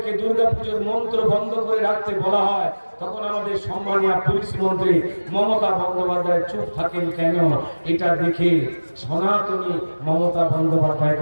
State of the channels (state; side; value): inverted; both; correlation -1.00